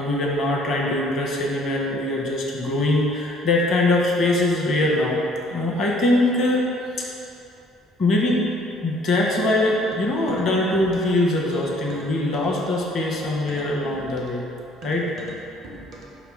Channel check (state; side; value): normal; both; correlation 0.59